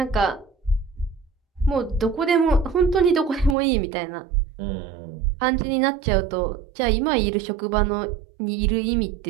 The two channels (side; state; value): left; drops out; at 3.6 s